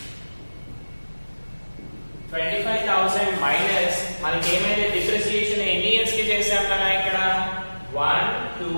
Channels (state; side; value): inverted; both; correlation -1.00